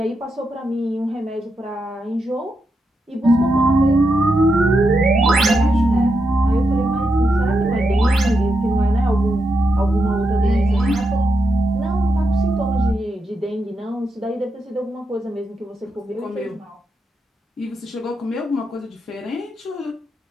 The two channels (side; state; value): both; normal; correlation 0.85